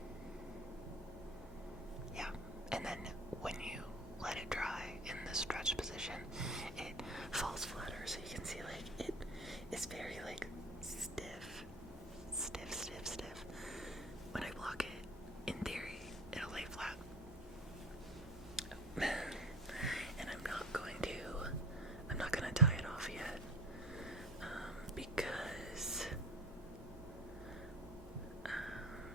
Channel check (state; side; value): normal; both; correlation 0.37